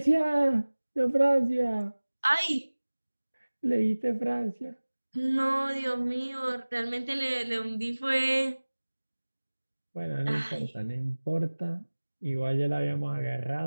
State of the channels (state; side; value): inverted; both; correlation -1.00